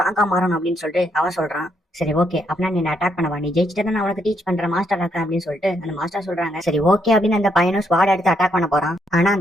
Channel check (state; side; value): normal; both; correlation 0.75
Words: மாறணும் அப்படின்னு சொல்லிட்டு அவன் சொல்றான். சரி ஓகே அப்படின்னா நீ அட்டாக் பண்ணவா, நீ ஜெயிச்சுட்டு நான் உனக்கு டீச் பண்றேன் மாஸ்டர் இருக்கேன் அப்படின்னு சொல்லிட்டு அந்த மாஸ்டர் சொல்றாங்க. சரி ஓகே அப்படின்னு அந்த பையனும் ஸ்வாட் எடுத்து அட்டாக் பண்ண போறான். ஆனா